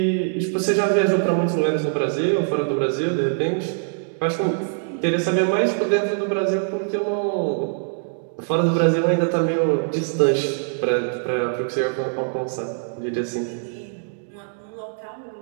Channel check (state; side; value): silent; left; digital silence